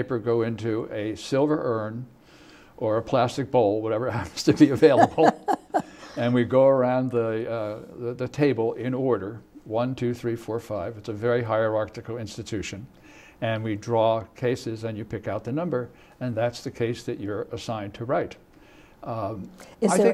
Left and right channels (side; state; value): both; identical; correlation 1.00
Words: go into a silver urn or a plastic bowl, whatever happens to be available, and we go around the table in order, 1, 2, 3, 4, 5. It's a very hierarchical institution. And we draw cases, and you pick out the number, and that's the case that you're assigned to write. Is